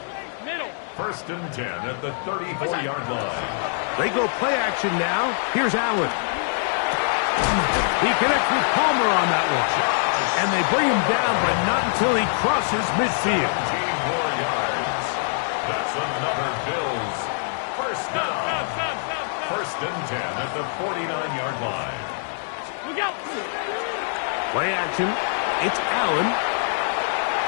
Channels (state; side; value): silent; right; digital silence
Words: First and 10 at the 34-yard line. They go play action now. Here's Allen. He connects with Palmer on that one. And they bring him down, but not until he crosses midfield. 15 more yards. That's another Bills first down. First and 10 at the 49-yard line. Look out. Play action. It's Allen.